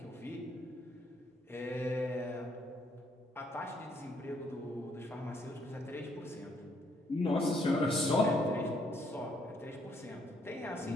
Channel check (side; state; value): both; normal; correlation 0.70